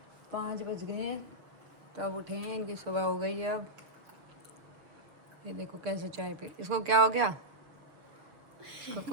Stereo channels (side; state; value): left; late; 6.4 ms